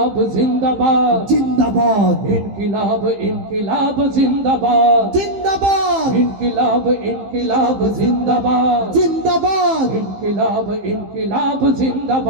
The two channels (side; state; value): left; late; 15 ms